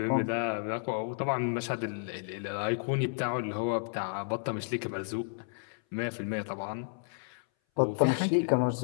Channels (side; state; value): right; silent; 57 dB below the other